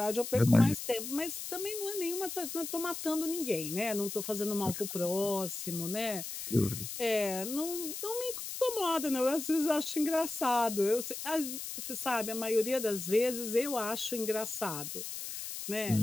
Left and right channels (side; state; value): left; noise; hiss, 7 dB below the sound